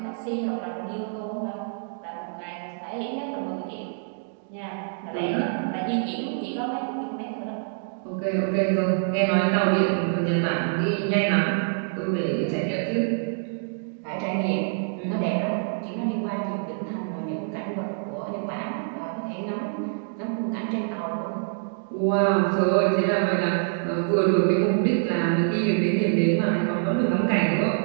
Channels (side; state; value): left; silent; digital silence